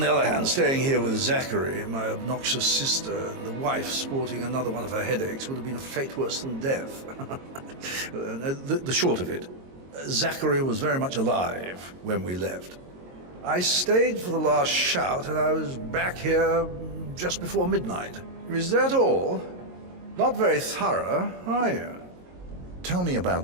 other hand, staying here with Zachary, my obnoxious sister, and the wife sporting another one of her headaches would have been a fate worse than death. The short of it, Zachary was very much alive when we left. I stayed for the last shout, and I was back here just before midnight. Is that all? Not very thorough, are you? Tell me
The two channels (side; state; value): left; late; 22 ms